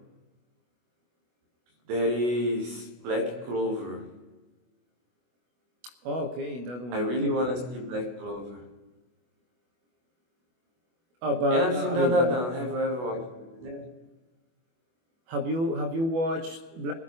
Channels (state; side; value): late; left; 24 ms